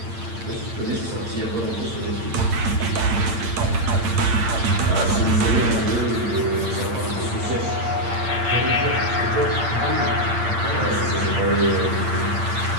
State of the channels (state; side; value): late; left; 8.8 ms